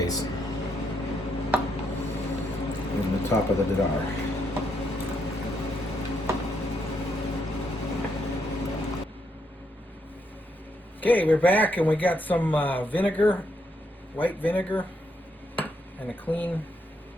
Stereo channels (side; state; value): both; normal; correlation 0.77